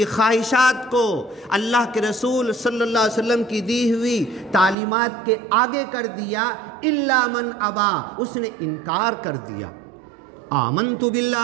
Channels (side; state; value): left; drops out; at 4.8 s